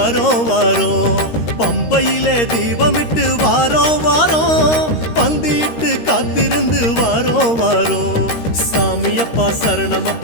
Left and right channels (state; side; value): late; right; 13 ms